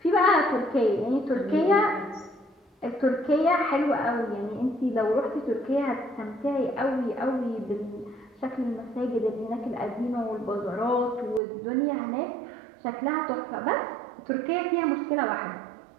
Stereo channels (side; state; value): left; drops out; at 11.4 s